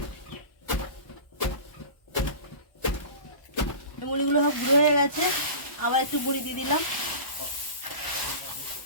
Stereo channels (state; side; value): late; right; 1.1 ms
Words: মুড়িগুলো সব গুঁড়ো হয়ে গেছে, আবার একটু মুড়ি দিয়ে দিলাম।